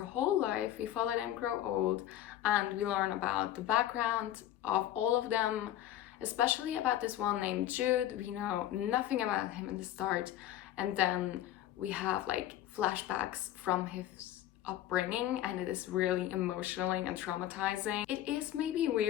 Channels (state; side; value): quieter; right; 12.5 dB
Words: life. We follow them grow old, and we learn about the background of all of them, especially about this one named Jude. We know nothing about him in the start, and then we have like flashbacks from his upbringing, and it is really emotionally and traumatizing. It is maybe